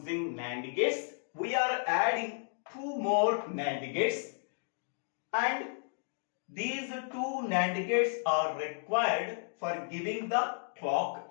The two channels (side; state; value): right; silent; digital silence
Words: NAND gates, we are adding two more NAND gates, and these two NAND gates are required for giving the clock